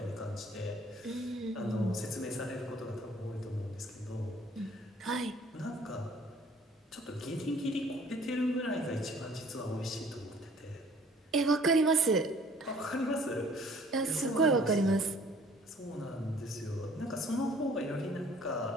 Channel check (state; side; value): normal; both; correlation 0.55